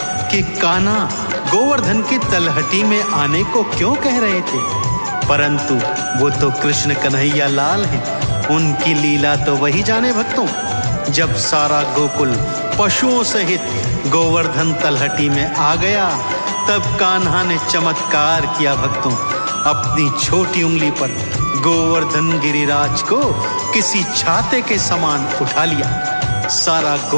कि कान्हा गोवर्धन की तलहटी में आने को क्यों कह रहे थे, परंतु वो तो कृष्ण कन्हैया लाल हैं, उनकी लीला तो वही जाने। भक्तों, जब सारा गोकुल पशुओं सहित गोवर्धन तलहटी में आ गया, तब कान्हा ने चमत्कार किया। भक्तों, अपनी छोटी उंगली पर गोवर्धन गिरिराज को किसी छाते के समान उठा लिया। सारा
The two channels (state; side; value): inverted; both; correlation -1.00